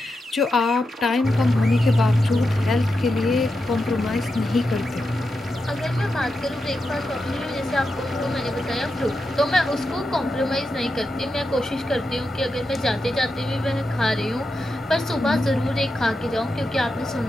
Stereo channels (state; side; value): normal; both; correlation 0.88